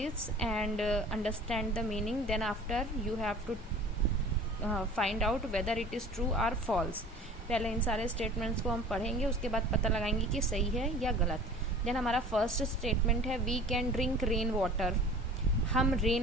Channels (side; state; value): both; normal; correlation 0.44